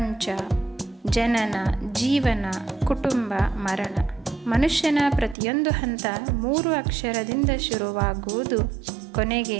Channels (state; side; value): drops out; left; at 5.4 s